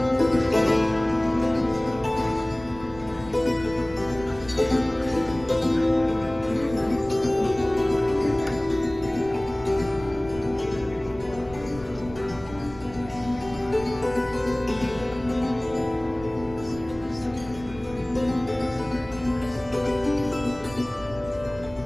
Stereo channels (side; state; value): right; noise; rumble, 18 dB below the sound